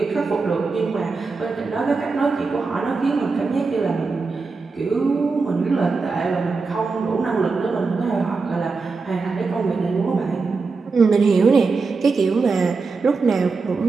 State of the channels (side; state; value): left; quieter; 4.3 dB